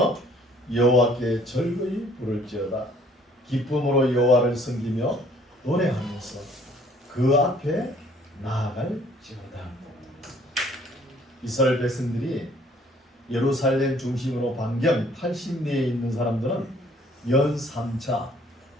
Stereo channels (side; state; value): both; normal; correlation 0.59